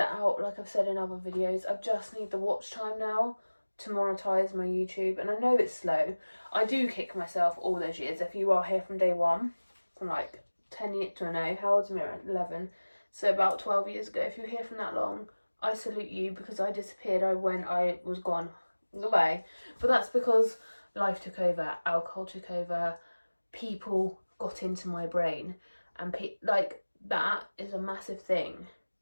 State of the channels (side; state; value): both; inverted; correlation -1.00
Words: out, like I've said in other videos. I just need the watch time now to monetize my YouTube, and I know it's slow. I do kick myself all those years. If you are here from day one, from like 10 years to no, how old's Mira? 11. So about 12 years ago, if you're here from that long, I salute you, because I disappeared. I was gone. Goodbye. But that's because life took over, alcohol took over, people got into my brain, and like that is a massive thing